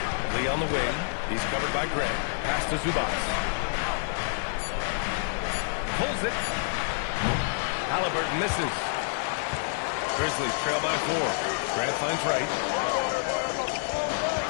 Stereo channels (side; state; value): right; silent; digital silence